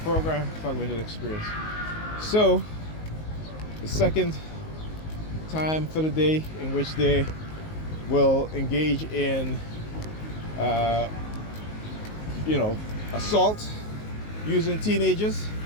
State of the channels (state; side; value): late; right; 19 ms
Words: Program, Target Individual Experience. So, the second time for the day in which they will engage in, assault using teenagers.